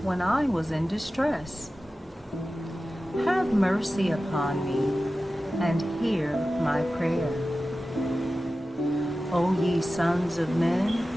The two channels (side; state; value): both; normal; correlation 0.94